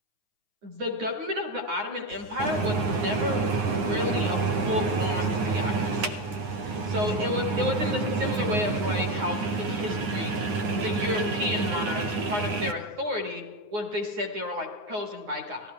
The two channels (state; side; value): late; left; 9.6 ms